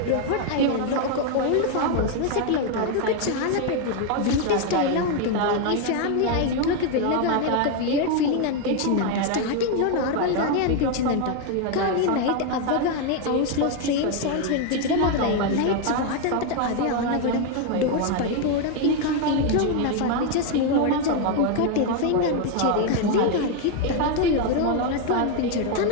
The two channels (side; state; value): both; different; correlation 0.01